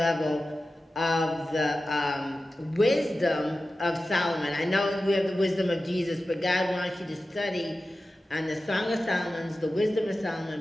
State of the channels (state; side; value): normal; both; correlation 0.94